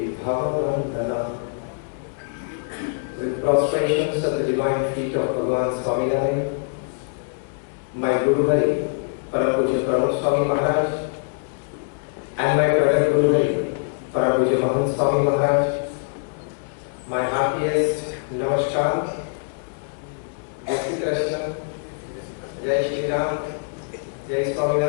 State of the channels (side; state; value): right; silent; digital silence